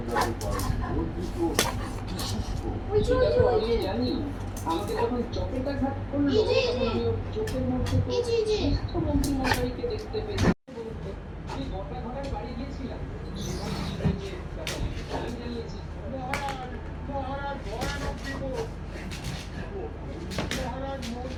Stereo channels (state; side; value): identical; both; correlation 1.00